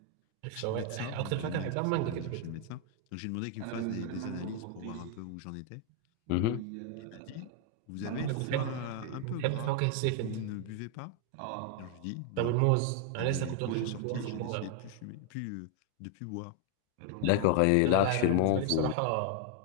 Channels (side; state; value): both; different; correlation 0.00